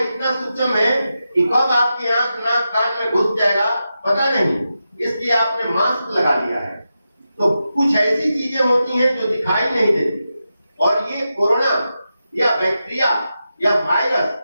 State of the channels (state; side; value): inverted; both; correlation -0.89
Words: इतना सूक्ष्म है कि कब आपकी आंख नाक कान में घुस जाएगा पता नहीं, इसलिए आपने मास्क लगा लिया है। तो कुछ ऐसी चीजें होती हैं जो दिखाई नहीं देती। और ये कोरोना या बैक्टीरिया या